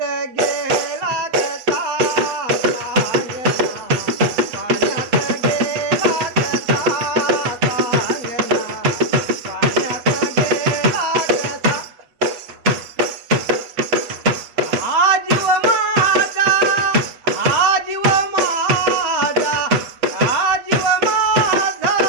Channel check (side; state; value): left; late; 8.0 ms